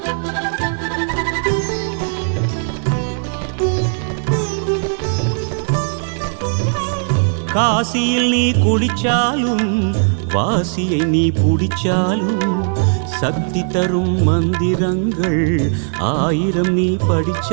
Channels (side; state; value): left; silent; 68 dB below the other